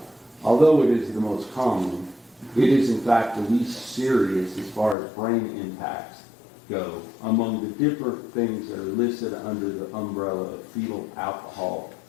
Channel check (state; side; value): drops out; right; at 5.0 s